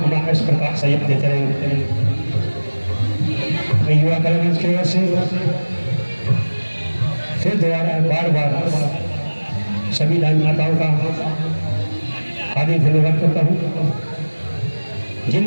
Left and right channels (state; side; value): inverted; both; correlation -1.00